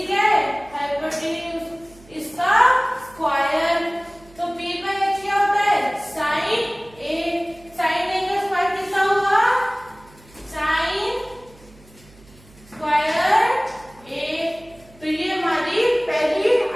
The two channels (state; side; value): noise; right; hum, 25 dB below the sound